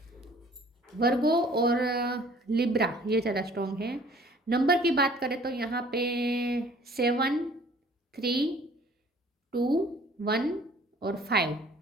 वर्गो और लिब्रा ये ज़्यादा स्ट्रॉन्ग है। नंबर की बात करें तो यहाँ पे 7, 3, 2, 1 और 5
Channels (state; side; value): normal; both; correlation 0.53